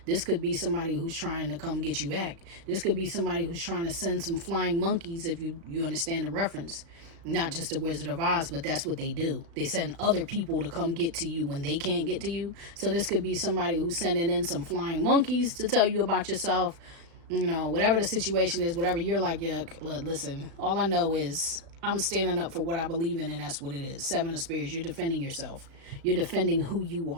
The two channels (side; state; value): left; late; 36 ms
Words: this could be somebody who's trying to come get you back. This could be somebody who's trying to send some flying monkeys, if you understand the reference. Not just the Wizard of Oz, but that's what they do. They send other people to come get to you when they can't get to you. So this could be somebody who's sending in some flying monkeys to tell you about yourself. You know, whatever the situation is, whatever you're like, yeah, listen, all I know is I'm standing up for what I believe in, and that's what it is. 7 of Spears, you're defending yourself. You're defending who you